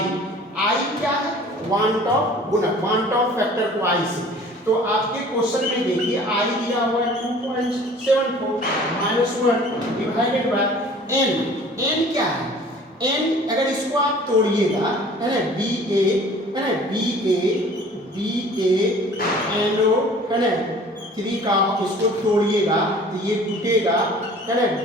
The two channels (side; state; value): both; normal; correlation 0.48